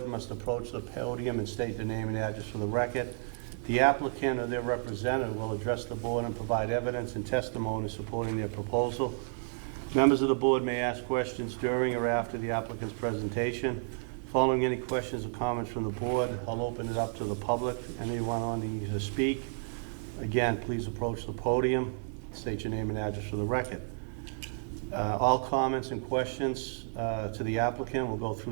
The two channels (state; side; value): silent; left; digital silence